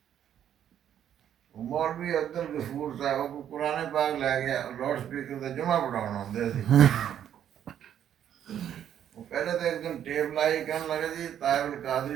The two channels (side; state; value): left; quieter; 9.9 dB